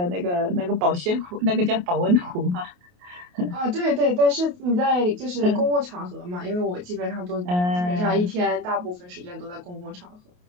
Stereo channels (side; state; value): left; late; 28 ms